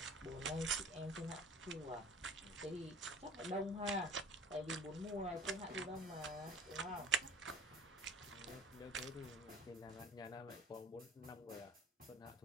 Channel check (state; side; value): normal; both; correlation 0.44